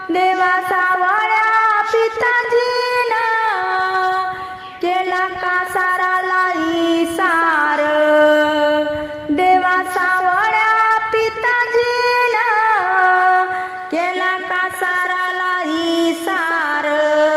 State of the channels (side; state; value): both; identical; correlation 1.00